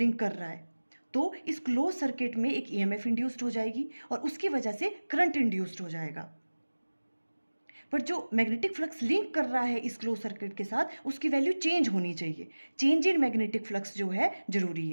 कर रहा है तो इस क्लोज सर्किट में एक ईएमएफ इंड्यूस्ड हो जाएगी और उसकी वजह से करंट इंड्यूस्ड हो जाएगा। पर जो मैग्नेटिक फ्लक्स लिंक कर रहा है इस क्लोज सर्किट के साथ, उसकी वैल्यू चेंज होनी चाहिए। चेंज इन मैग्नेटिक फ्लक्स जो है जरूरी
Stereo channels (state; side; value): inverted; both; correlation -1.00